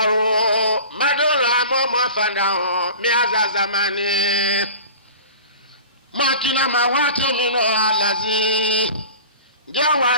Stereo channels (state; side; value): inverted; both; correlation -0.38